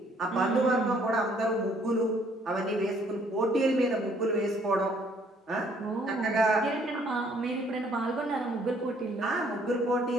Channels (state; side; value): normal; both; correlation 0.63